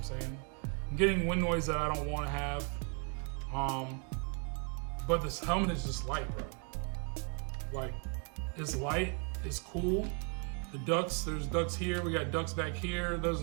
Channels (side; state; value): left; quieter; 39.0 dB